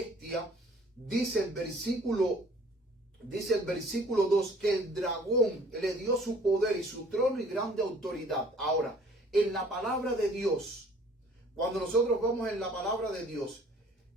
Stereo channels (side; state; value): both; normal; correlation 0.54